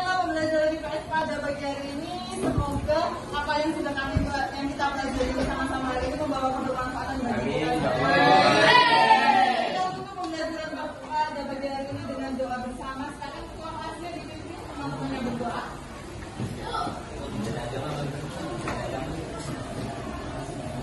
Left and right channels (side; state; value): both; identical; correlation 1.00